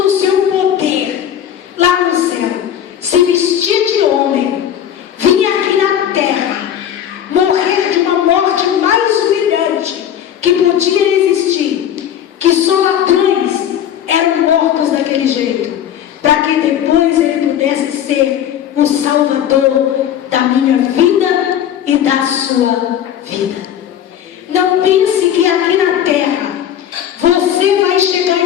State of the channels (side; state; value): right; quieter; 10.0 dB